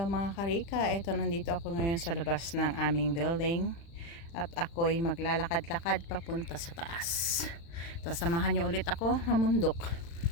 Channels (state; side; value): late; right; 35 ms